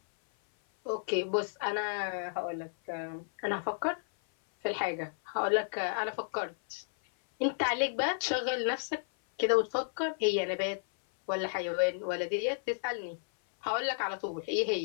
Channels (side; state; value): right; silent; 56 dB below the other